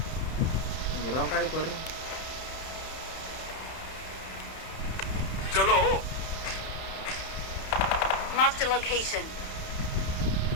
గుర్రం కాడి కొర్రి. चलो Marked a location.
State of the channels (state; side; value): late; right; 31 ms